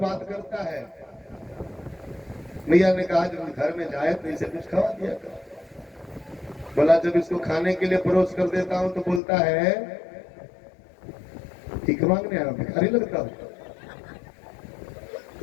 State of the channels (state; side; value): drops out; right; at 9.2 s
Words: करता है। मैया ने कहा जब घर में जाए तो इसे कुछ खवा दिया कर। बोला जब इसको खाने के लिए परोस कर देता हूं तो बोलता है ठीक मांगने आया, भिखारी लगता हूं